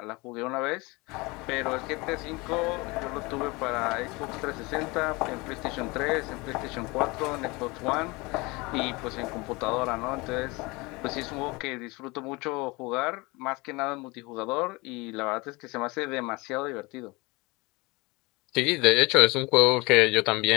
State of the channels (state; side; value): quieter; right; 24.8 dB